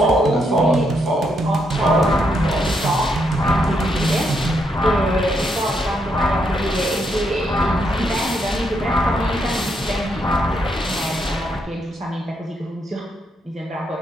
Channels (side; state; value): both; normal; correlation 0.77